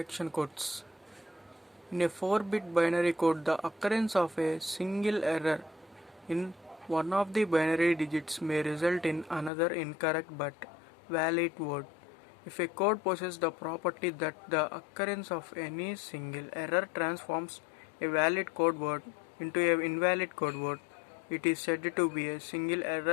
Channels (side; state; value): right; drops out; at 9.5 s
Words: codes. In a 4-bit binary code, the occurrence of a single error in one of the binary digits may result in another incorrect but valid word. If a code possesses the property that the occurrence of any single error transforms a valid code word into an invalid code word, it is said to be a single